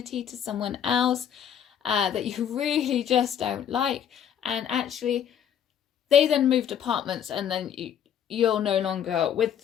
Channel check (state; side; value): quieter; right; 9.1 dB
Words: to someone else that you really just don't like, and actually they then moved apartments, and then you're no longer with